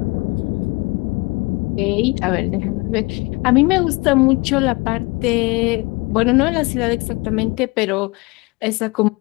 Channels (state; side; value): quieter; right; 25.6 dB